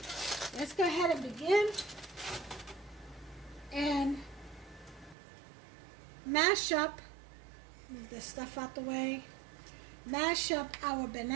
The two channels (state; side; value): drops out; left; at 5.2 s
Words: let's go ahead and begin and mash up, move this stuff out the way. Mash up our